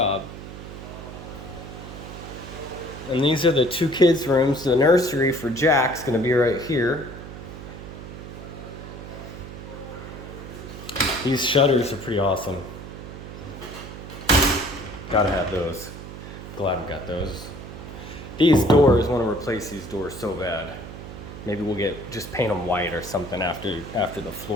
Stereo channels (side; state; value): right; noise; hum, 12 dB below the sound